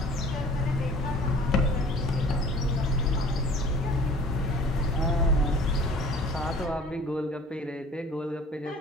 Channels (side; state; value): both; normal; correlation 0.48